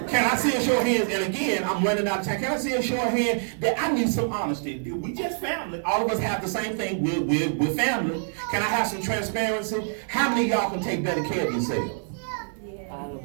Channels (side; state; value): left; silent; digital silence